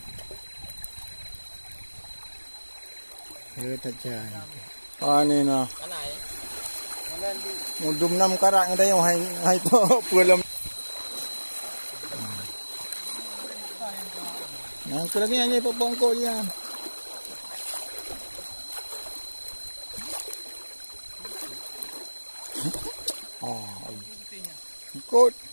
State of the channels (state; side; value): inverted; both; correlation -1.00